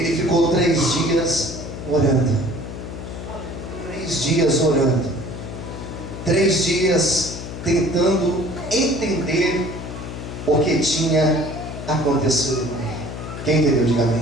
ficou 3 dias orando. 3 dias orando. 3 dias tentando entender o que tinha acontecido com ele. Quem entendeu? Diga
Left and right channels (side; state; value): left; noise; hum, 9 dB below the sound